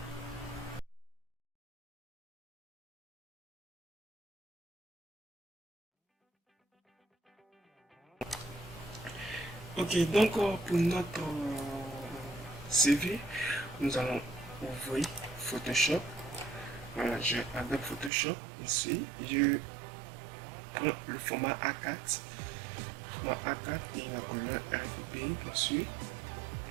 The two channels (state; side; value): drops out; left; at 18.1 s